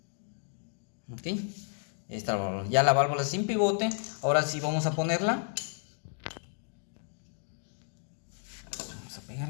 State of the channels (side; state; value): right; silent; 56 dB below the other